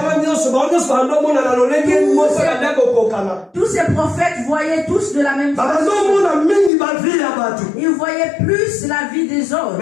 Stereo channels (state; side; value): drops out; right; at 6.7 s